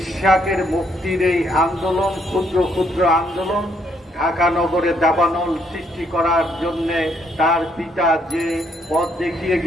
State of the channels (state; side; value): normal; both; correlation 0.70